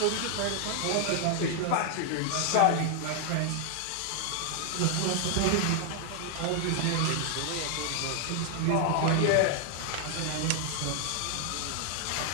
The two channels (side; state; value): both; different; correlation 0.00